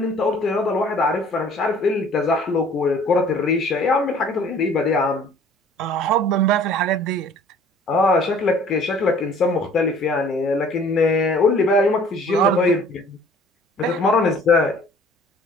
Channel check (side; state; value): both; normal; correlation 0.52